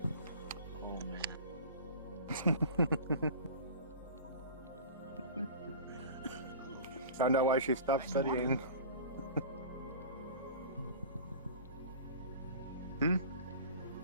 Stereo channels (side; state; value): both; inverted; correlation -0.39